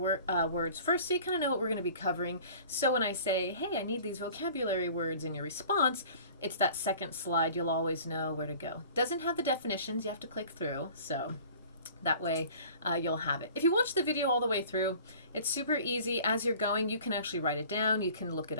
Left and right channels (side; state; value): both; inverted; correlation -0.46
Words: first, so you kind of know what we're going to be covering. So when I say, hey, I need these vocabulary words in your response, it's that second slide. You'll always know where to go. Doesn't have the definitions. You have to click through. So that way you'll have it. If you watch the video all the way through, it's super easy. As you're going, you can actually write it down. You can look it